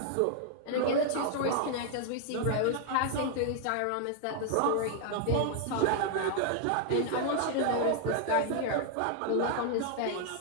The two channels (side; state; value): both; different; correlation 0.00